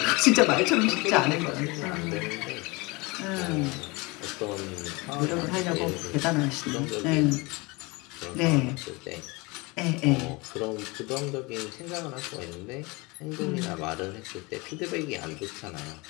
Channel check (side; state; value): right; quieter; 25.6 dB